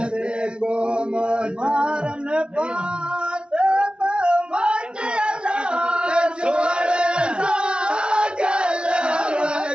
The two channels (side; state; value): left; late; 0.056 ms